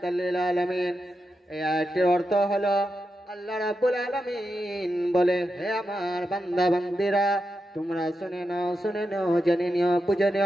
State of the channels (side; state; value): both; normal; correlation 0.87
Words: লিল আলামিন। এই আয়াতের অর্থ হলো আল্লাহ রাব্বুল আলামিন বলে, হে আমার বান্দা বান্দিরা, তোমরা শুনে নাও, জেনে নিও, বুঝে